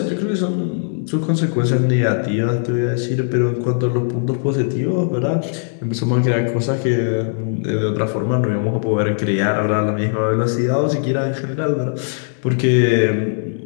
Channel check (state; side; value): silent; right; digital silence